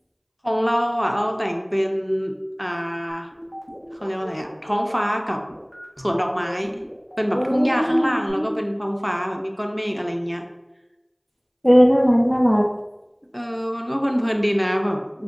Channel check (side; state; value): both; identical; correlation 1.00